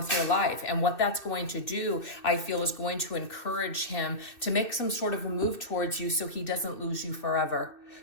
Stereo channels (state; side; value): late; right; 2.6 ms